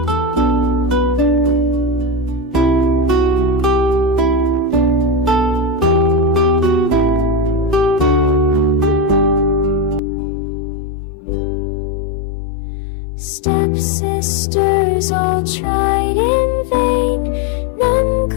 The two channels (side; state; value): right; drops out; at 10.0 s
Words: Stepsisters all tried in vain, none